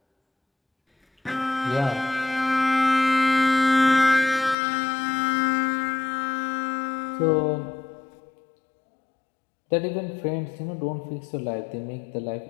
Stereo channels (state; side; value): drops out; right; at 4.5 s